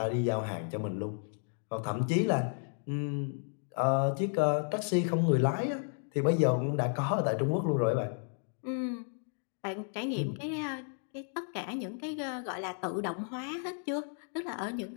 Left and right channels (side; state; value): right; silent; 56 dB below the other